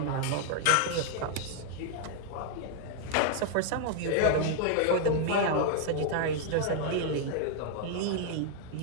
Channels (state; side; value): different; both; correlation 0.00